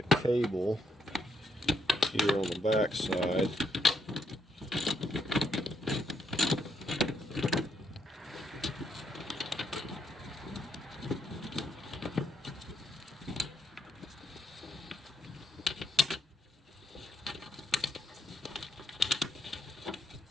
cable here on the back side.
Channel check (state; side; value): normal; both; correlation 0.76